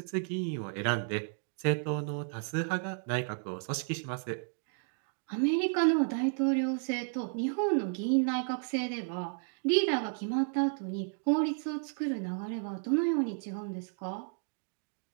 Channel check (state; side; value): silent; left; 56 dB below the other